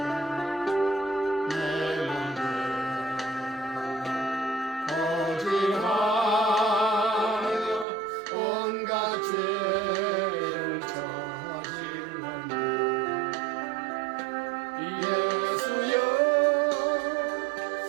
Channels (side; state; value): left; drops out; at 7.9 s